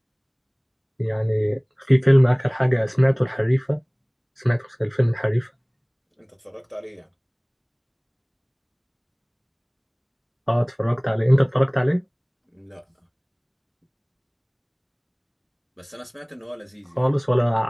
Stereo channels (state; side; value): identical; both; correlation 1.00